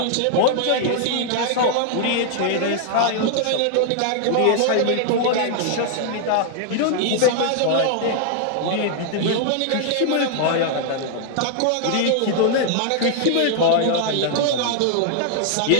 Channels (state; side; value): different; both; correlation 0.00